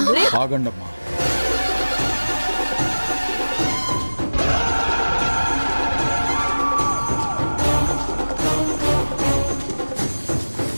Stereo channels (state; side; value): inverted; both; correlation -1.00